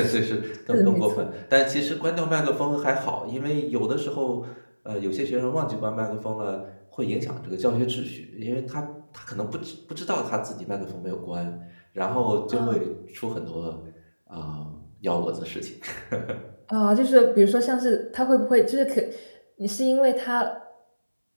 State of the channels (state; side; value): inverted; both; correlation -1.00